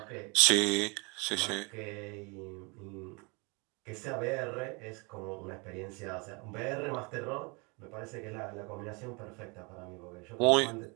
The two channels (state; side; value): quieter; left; 30.2 dB